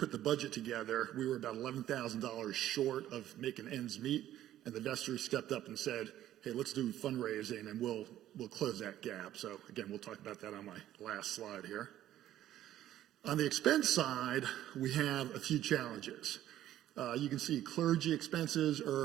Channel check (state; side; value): quieter; left; 12.7 dB